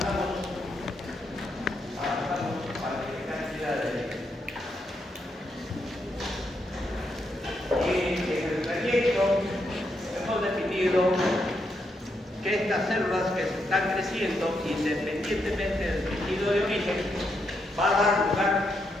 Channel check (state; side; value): normal; both; correlation 0.80